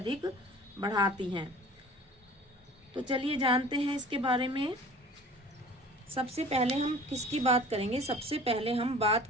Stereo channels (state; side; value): normal; both; correlation 0.44